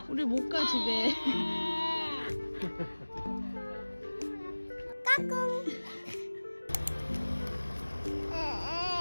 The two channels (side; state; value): both; inverted; correlation -1.00